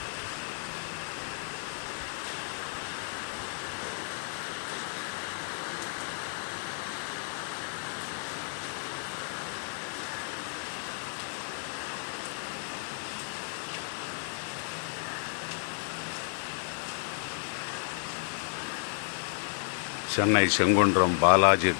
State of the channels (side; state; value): right; silent; 56 dB below the other